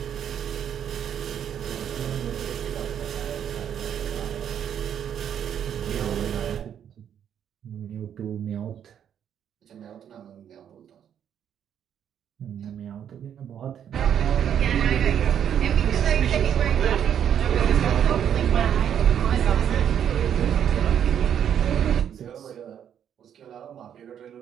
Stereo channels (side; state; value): left; quieter; 9.1 dB